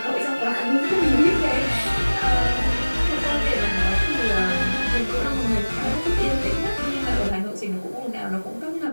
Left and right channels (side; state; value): both; inverted; correlation -1.00